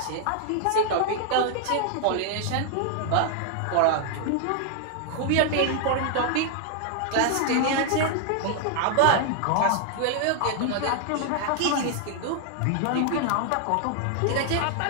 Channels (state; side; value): different; both; correlation 0.00